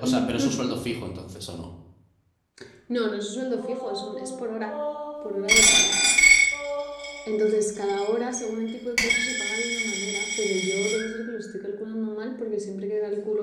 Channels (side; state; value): both; identical; correlation 1.00